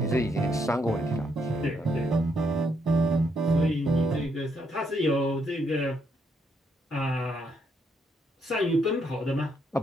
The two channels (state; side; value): normal; both; correlation 0.75